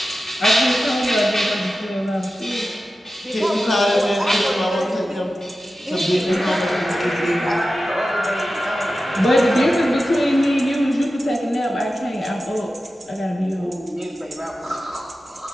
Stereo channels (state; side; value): normal; both; correlation 0.93